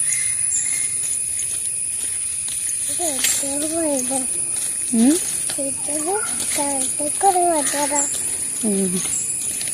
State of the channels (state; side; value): identical; both; correlation 1.00